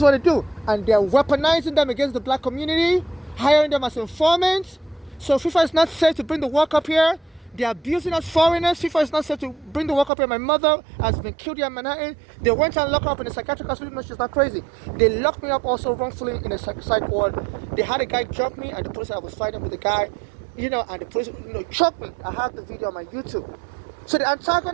what they do, and they're weaponizing them against the black community, hiring them as informants. So FIFA is not safe to bring the work up here. They're abusing us foreigners. FIFA is not safe to bring the work up here. My mother has been killed here in Manhattan. They went and locked her up in a psychiatric hospital. No, she's not crazy. They locked me up also wrongfully in a psych ward. They had a guy jump me, and the police said I was fighting with the guy, and the police, choked me. I have the video on my YouTube. So they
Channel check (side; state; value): left; drops out; at 10.1 s